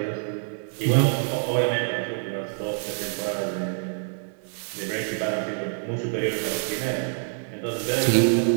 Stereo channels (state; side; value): silent; left; 55 dB below the other